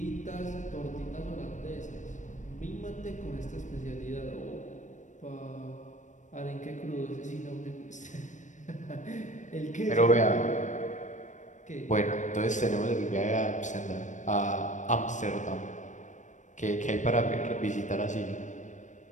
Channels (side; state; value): right; late; 0.36 ms